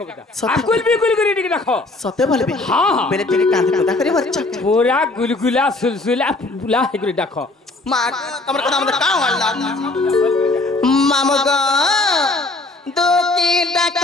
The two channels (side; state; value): right; quieter; 3.1 dB